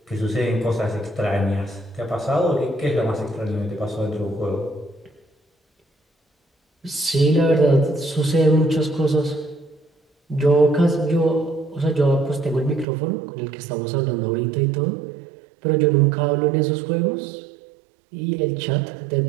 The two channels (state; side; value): drops out; left; at 12.9 s